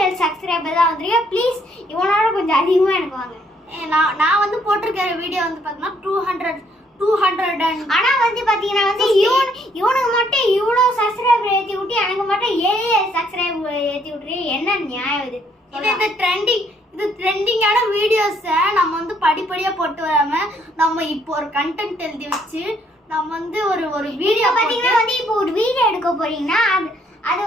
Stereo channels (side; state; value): both; normal; correlation 0.68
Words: சப்ஸ்கிரைபர் தான் வந்திருக்கேன். ப்ளீஸ் இவனோட கொஞ்சம் அதிகமா எனக்கு வாங்க. நான் வந்து போட்டிருக்கிற வீடியோ வந்து பார்த்தீங்கன்னா 200. ஆனா வந்து பாத்தீங்கன்னா வந்து இவனுக்கு மட்டும் இவ்வளோ சப்ஸ்கிரைபர் ஏற்றி விட்டு எனக்கு மட்டும் 7 சப்ஸ்கிரைபர் ஏற்றி விட்டுரு. என்ன நியாயம் இது? இது ட்ரெண்டிங்கான வீடியோஸை நம்ம வந்து படிப்படியாக போட்டு வராம நம்ம இப்போ ஒரு கண்டென்ட் எழுதி வச்சு நம்ம வந்து ஒரு வீடியோ பார்த்தீங்கன்னா வந்து இப்போ ஒரு வீடியோ எடுக்க போறீங்கன்னா அது